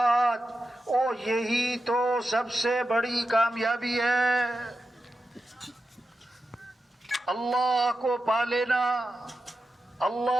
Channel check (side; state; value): both; normal; correlation 0.90